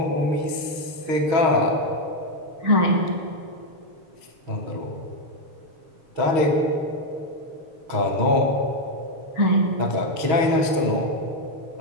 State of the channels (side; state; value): left; late; 6.3 ms